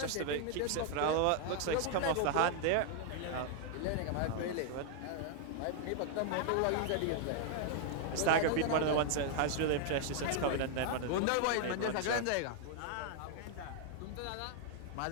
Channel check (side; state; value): both; different; correlation 0.00